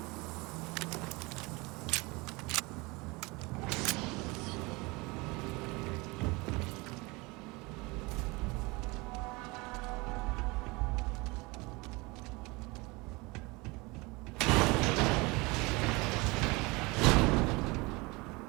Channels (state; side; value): quieter; left; 25.1 dB